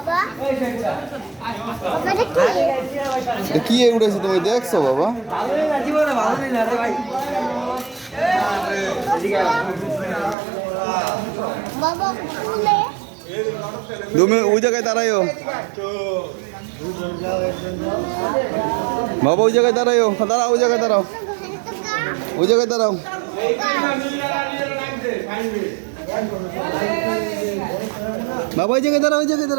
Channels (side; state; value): left; drops out; at 10.4 s